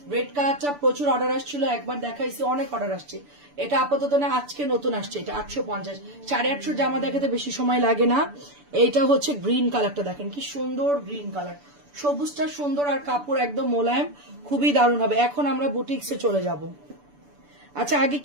রেড কালারটা প্রচুর অর্ডার আসছিল, একবার দেখাইছি, অনেক অর্ডার আসছে। এটা আপাতত না, আজকে নতুন আসছে, এটা 850। 850 জামা দেখাতে বেশি সময় লাগে না। এইটা হচ্ছে গ্রিন কালারটা, দেখেন কি সুন্দর গ্রিন কালার, সবুজটা সুন্দর, আর কাপড় একদম মোলায়েম, খুবই দারুণ হবে। এখন আমরা বুটিক্সে চলে যাব। আচ্ছা আগে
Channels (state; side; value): late; left; 6.9 ms